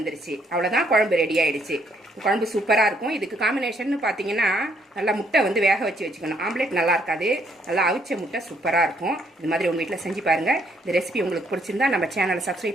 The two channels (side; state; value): both; normal; correlation 0.69